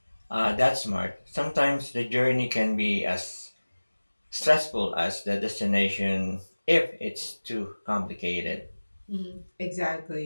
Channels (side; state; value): both; inverted; correlation -1.00